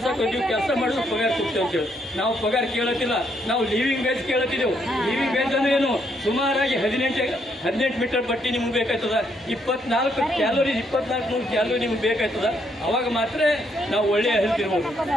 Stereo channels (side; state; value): both; normal; correlation 0.73